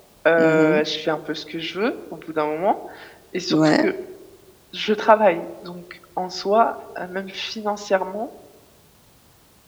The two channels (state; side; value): identical; both; correlation 1.00